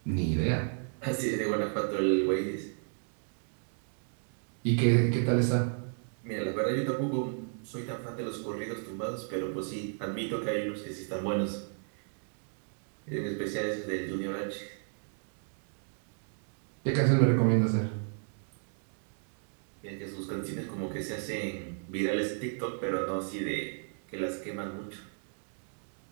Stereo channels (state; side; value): silent; left; 56 dB below the other